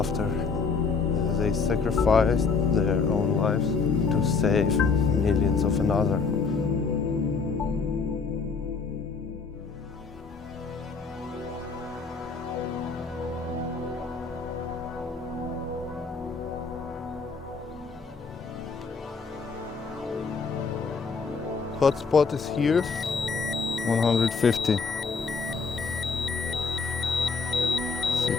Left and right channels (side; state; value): right; quieter; 4.9 dB